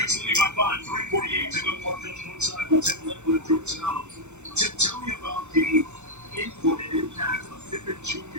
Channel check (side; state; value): left; late; 0.83 ms